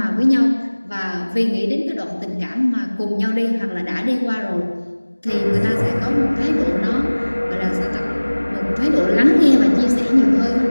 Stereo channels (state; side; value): inverted; both; correlation -1.00